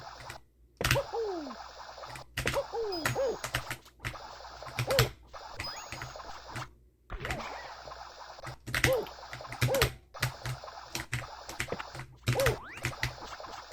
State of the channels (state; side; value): identical; both; correlation 1.00